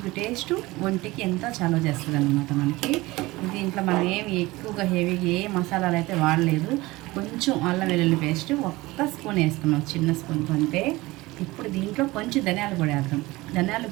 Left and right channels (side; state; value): left; quieter; 20.4 dB